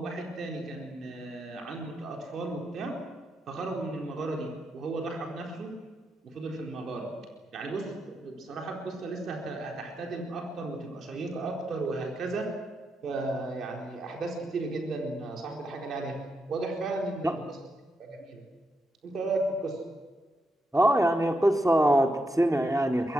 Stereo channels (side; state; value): both; normal; correlation 0.83